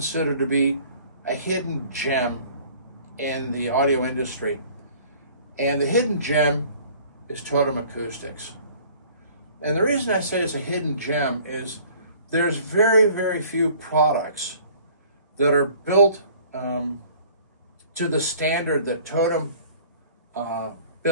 to be a hidden gem in the audio industry. And the hidden gem is Totem Acoustics. And the reason I say it's a hidden gem is there's very, very few products that are built to the standard that Totem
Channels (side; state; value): both; inverted; correlation -0.52